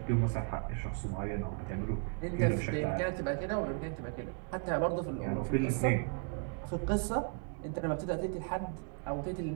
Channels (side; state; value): left; quieter; 37.7 dB